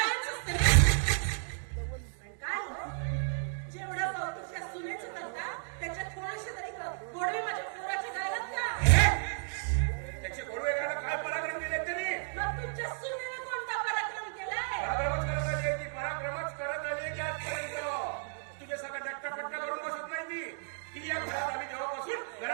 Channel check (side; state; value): left; silent; digital silence